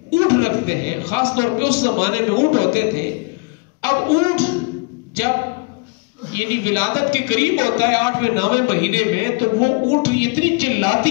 اونٹ رکھتے ہیں. خاص طور پہ اس زمانے میں اونٹ ہوتے تھے. اب اونٹ جب یعنی ولادت کے قریب ہوتا ہے 8ویں 9ویں مہینے میں, تو وہ اونٹ اتنی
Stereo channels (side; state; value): right; quieter; 28.8 dB